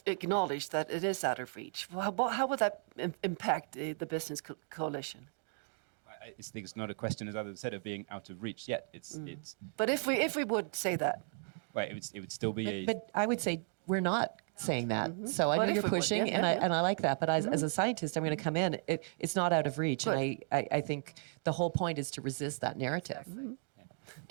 acknowledge that it is out of reach? How would that impact the business coalition? I think it's not a question, as others said, of being out of reach yet. It's. But if we would say that, right, it would still be But I would say we're not saying that. So I But know if you're we would, pushing, yeah, yeah. and I like that. But as a scientist, I'm going to come in. It's not out of reach, and I think the whole point is to resist that narrative.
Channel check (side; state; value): left; silent; 54 dB below the other